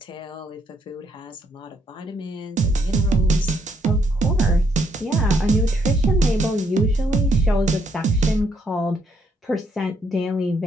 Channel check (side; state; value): both; normal; correlation 0.73